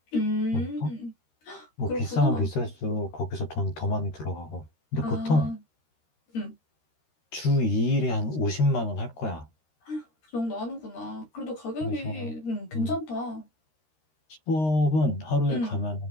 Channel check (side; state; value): right; late; 13 ms